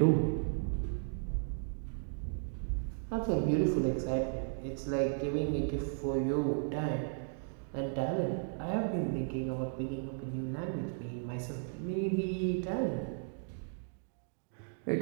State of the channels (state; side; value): silent; left; digital silence